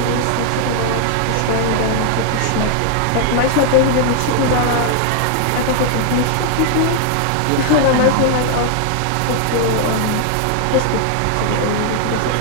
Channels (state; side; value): different; both; correlation 0.00